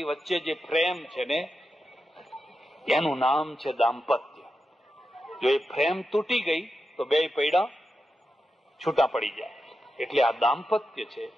વચ્ચે જે પ્રેમ છે ને એનું નામ છે દાંપત્ય. જો એ પ્રેમ તૂટી ગઈ તો બે પૈડા છૂટા પડી જાય. એટલે આ દાંપત્ય છે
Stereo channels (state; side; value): normal; both; correlation 0.89